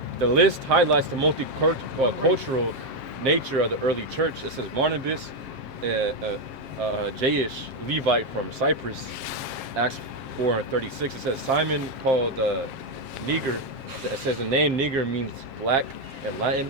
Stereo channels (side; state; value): left; late; 7.6 ms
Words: The list highlights the multicultural nature of the early church. It says Barnabas, Jayish, Levite from Cyprus, Acts 4:36. It says Simon called Niger. It says the name Niger means black in